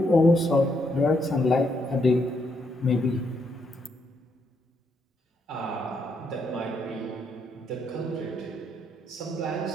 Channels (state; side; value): normal; both; correlation 0.75